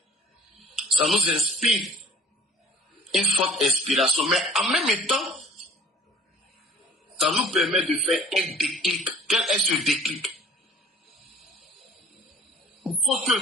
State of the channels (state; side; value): normal; both; correlation 0.49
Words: ça nous inspire une forte inspiration. Mais en même temps, ça nous permet de faire un déclic. Quel est ce déclic? Il faut que